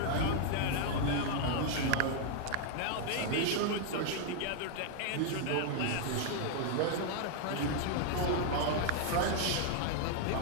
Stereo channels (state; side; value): different; both; correlation 0.00